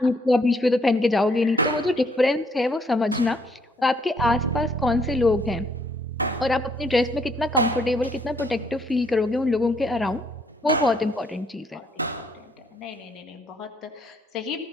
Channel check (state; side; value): normal; both; correlation 0.68